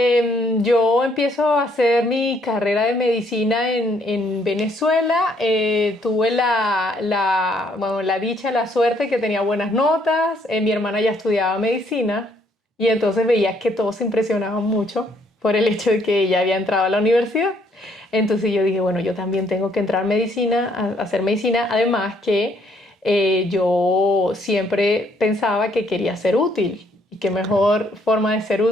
yo empiezo a hacer mi carrera de medicina en Venezuela. Tuve bueno, la dicha, la suerte que tenía buenas notas. Mi hermana ya estudiaba medicina y entonces veía que todos se impresionaban mucho por el hecho de que ella había entrado a la universidad. Entonces yo dije, bueno, yo también tengo que entrar a medicina, a hacer medicina. Además que yo siempre pensaba que quería ser útil. Y qué Ok. mejor forma de ser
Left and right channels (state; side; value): normal; both; correlation 0.68